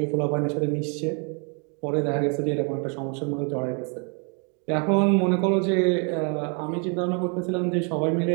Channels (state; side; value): quieter; left; 37.7 dB